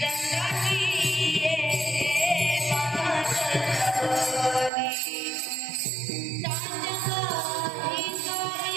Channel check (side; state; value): left; drops out; at 4.7 s